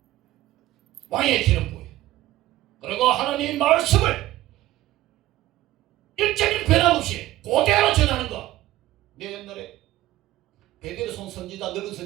왕에게 기름 부어요. 그리고 하나님의 말씀을 일정일 변함없이 그대로 전하는 것. 내 옛날에 베드로손 선지자, 늙은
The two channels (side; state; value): left; quieter; 15.5 dB